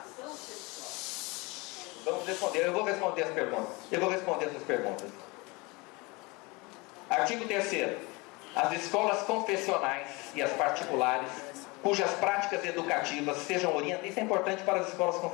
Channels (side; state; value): right; quieter; 25.8 dB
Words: sexual. Vamos responder, eu vou responder as perguntas. Eu vou responder essas perguntas. Artigo 3º. As escolas confessionais e as particulares, cujas práticas educativas sejam orientadas... Isso é importante para as escolas